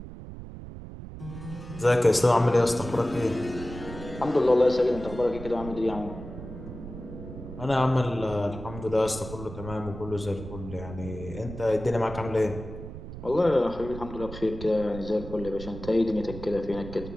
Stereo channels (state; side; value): noise; right; rumble, 11 dB below the sound